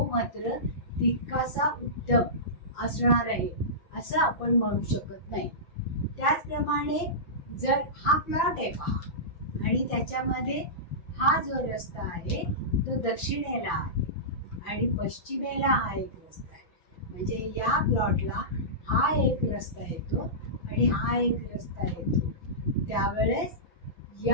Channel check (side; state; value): right; late; 5.9 ms